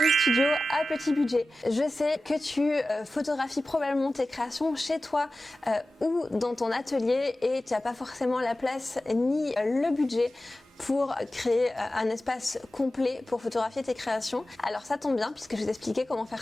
studio à petit budget. Je sais que tu photographies probablement tes créations chez toi ou dans ton atelier et tu n'as pas forcément la place ni le budget pour créer un espace complet pour photographier tes créations. Alors ça tombe bien puisque je vais t'expliquer comment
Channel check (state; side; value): normal; both; correlation 0.95